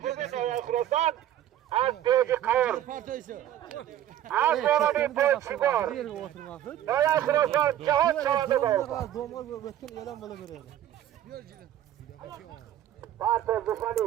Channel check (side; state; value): left; quieter; 11.8 dB